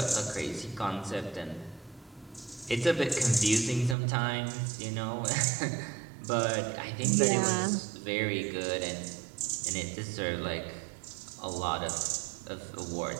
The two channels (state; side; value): drops out; left; at 4.0 s